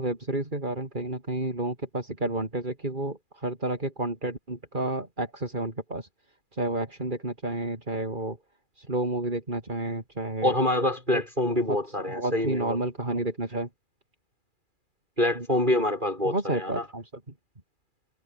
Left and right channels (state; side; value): late; left; 2.4 ms